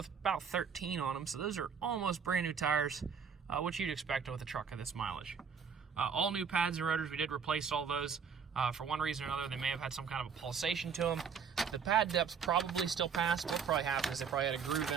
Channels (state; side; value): quieter; left; 6.6 dB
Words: about 13 on them, so those are almost brand new tires, which you'd expect with a truck of this mileage. All new pads and rotors, we did replace all those. For one reason or another, they may have had some kind of a pulsation to them. The pad depths probably still pass. What probably happened is they probably had a groove